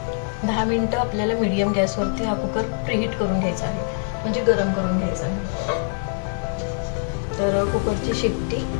10 मिनिटं आपल्याला मीडियम गॅसवरती हा कुकर प्रीहीट करून घ्यायचा आहे, म्हणजे गरम करून घ्यायचा आहे. तर कुकरची शेपटी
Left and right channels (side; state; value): right; silent; 63 dB below the other